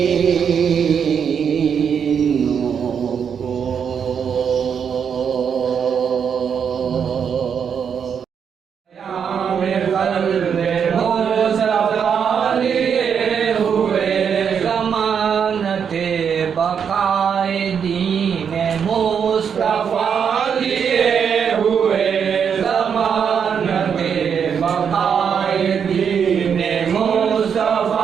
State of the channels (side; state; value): left; quieter; 7.2 dB